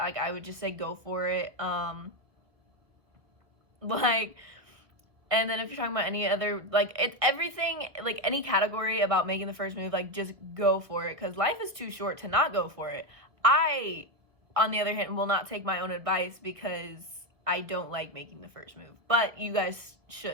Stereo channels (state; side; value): late; left; 1.8 ms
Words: I would just say go for it. Like, and then if you're talking about any other, like, it's everything, like any category about making the first move, like, just go for it, because life is too short to not go for it. I, on the other hand, will not take my own advice, because I don't like making the first move, but you guys